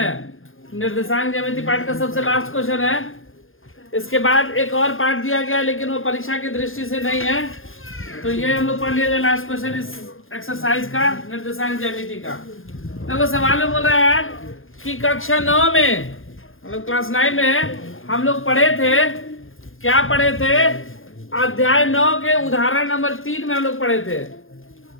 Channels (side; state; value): right; late; 0.59 ms